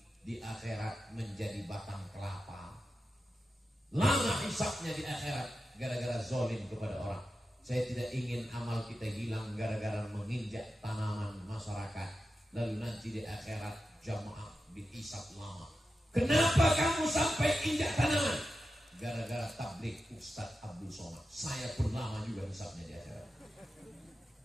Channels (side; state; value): both; normal; correlation 0.91